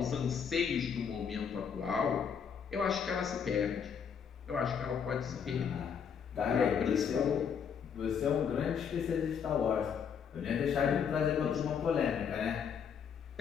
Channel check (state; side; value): quieter; right; 7.2 dB